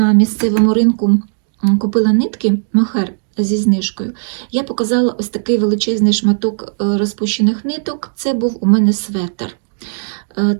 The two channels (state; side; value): silent; left; digital silence